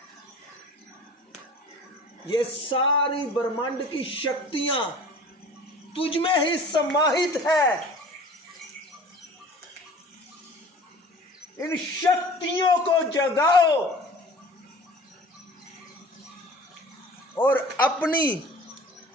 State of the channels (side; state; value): both; normal; correlation 0.44